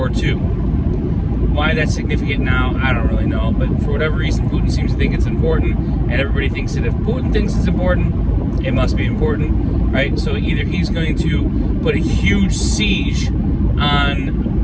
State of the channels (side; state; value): both; identical; correlation 1.00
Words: II. Why that's significant now, I don't really know, but for whatever reason, Putin seems to think it's important, and everybody thinks that if Putin thinks it's important, it must be important, right? So either he's going to put a huge siege